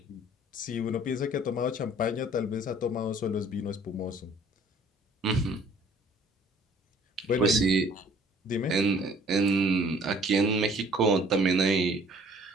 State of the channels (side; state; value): both; normal; correlation 0.55